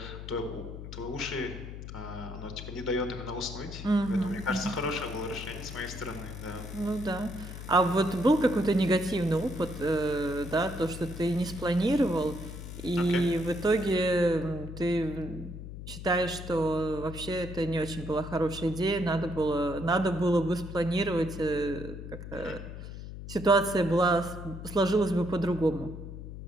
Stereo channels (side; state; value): left; noise; hum, 10 dB below the sound